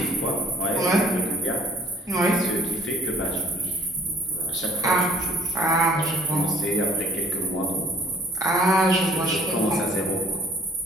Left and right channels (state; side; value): normal; both; correlation 0.57